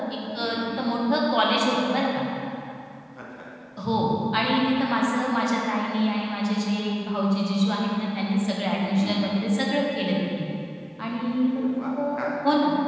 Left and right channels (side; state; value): both; identical; correlation 1.00